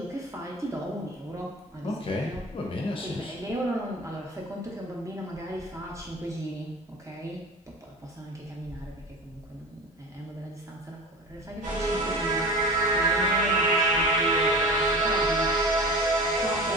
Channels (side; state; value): both; normal; correlation 0.35